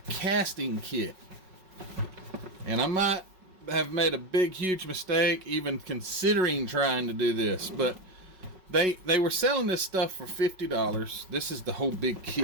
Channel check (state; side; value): late; left; 5.4 ms